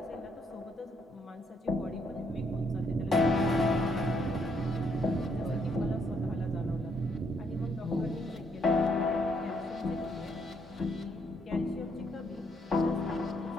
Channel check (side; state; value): both; normal; correlation 0.72